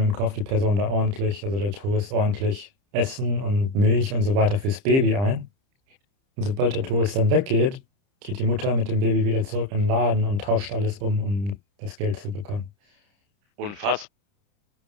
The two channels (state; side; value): late; left; 30 ms